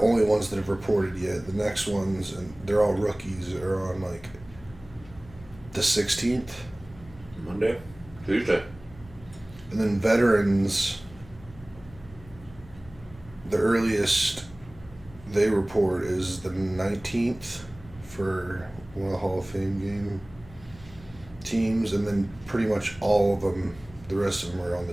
only ones that have reported yet. The next ones, and they're all rookies, are on like the 16th. Monday? Tuesday. And then veterans, the earliest they report is the 19th for one of the Hall of Fame game teams, and then pretty much all of them, the rest of them are on the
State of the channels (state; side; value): noise; left; hum, 20 dB below the sound